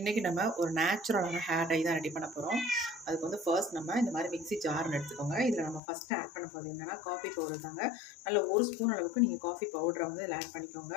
நம்ம ஒரு நேச்சுரலான ஹேர் டை தான் ரெடி பண்ண போகிறோம். அதுக்கு வந்து ஃபர்ஸ்ட் நம்ம இந்த மாதிரி மிக்ஸி ஜார்னு எடுத்துக்கோங்க. இதில் நம்ம ஃபஸ்ட்டு ஆட் பண்ண போகிறது என்னென்னா காஃபி பவுடர் தாங்க. நல்ல 1 ஸ்பூன் அளவுக்கு நீங்கள் காஃபி பவுடரை வந்து இதில் ஆட் பண்ணிக்கோங்க.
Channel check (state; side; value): drops out; right; at 5.8 s